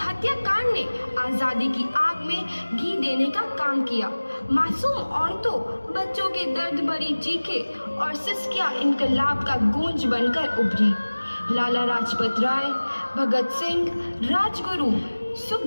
ने आजादी की आग में घी देने का काम किया। मासूम औरतों, बच्चों के दर्द भरी चीखें और सिसकियां इनकलाब का गूंज बनकर उभरी। लाला लाजपत राय, भगत सिंह, राजगुरु,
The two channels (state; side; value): inverted; both; correlation -1.00